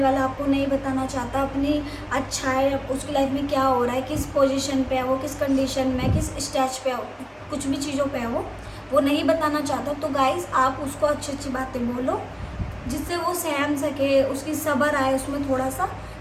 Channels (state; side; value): identical; both; correlation 1.00